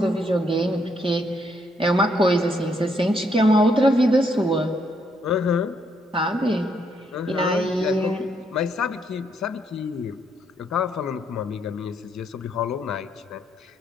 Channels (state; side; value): normal; both; correlation 0.73